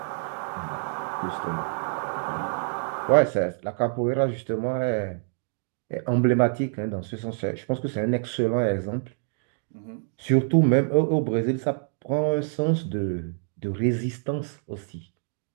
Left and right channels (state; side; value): silent; left; 60 dB below the other